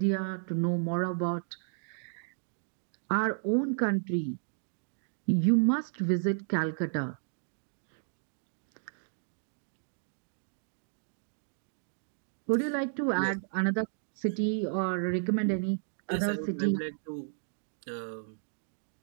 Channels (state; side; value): silent; left; digital silence